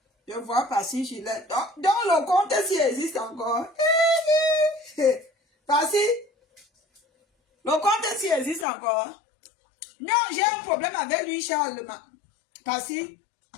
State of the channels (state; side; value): drops out; right; at 8.7 s